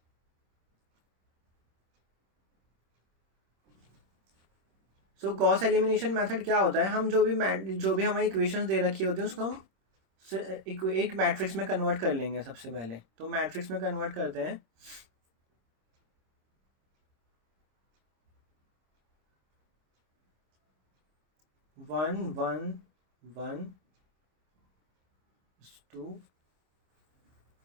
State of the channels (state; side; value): late; left; 26 ms